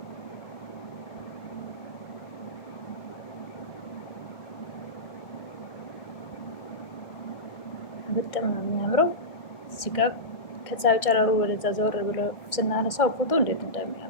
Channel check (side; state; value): right; late; 1.6 ms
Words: በጣም ነው የሚያምረው። እዚህ ጋር ከፀሐዩ ጨረሩ ወደዛ ዘወር ብሎ ስናነሳው ፎቶ እንዴት